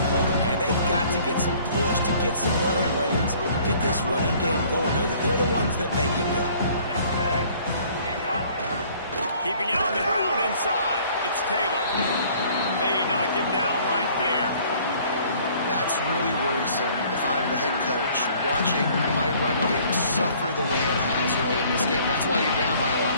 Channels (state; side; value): inverted; both; correlation -0.56